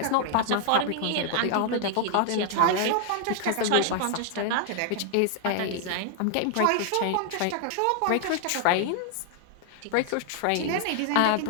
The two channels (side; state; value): both; different; correlation 0.00